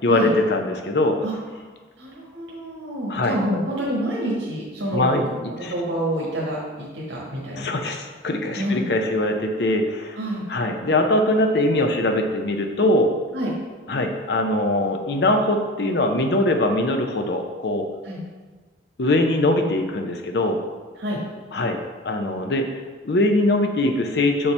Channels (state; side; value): normal; both; correlation 0.33